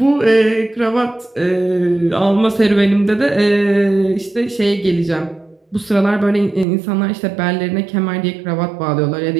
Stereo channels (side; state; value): left; drops out; at 6.7 s